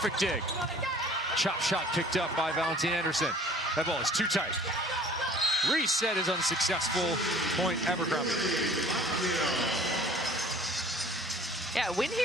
dig. Chop shot picked up by Valentin Anderson. That ball is too tight. Reset is unsuccessful. Point Abercrombie. Yeah, win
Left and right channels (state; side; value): normal; both; correlation 0.51